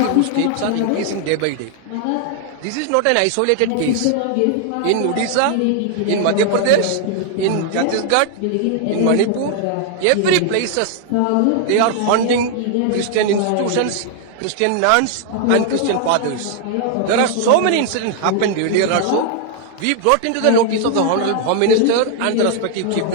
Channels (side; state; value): both; different; correlation 0.00